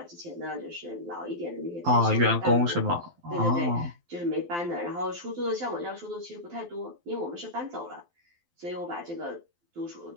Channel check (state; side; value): late; left; 12 ms